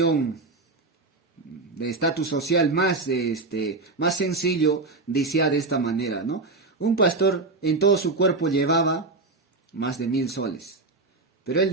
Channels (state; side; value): quieter; left; 3.5 dB